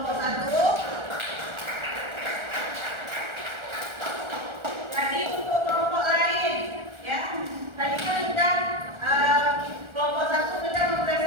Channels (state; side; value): late; left; 1.4 ms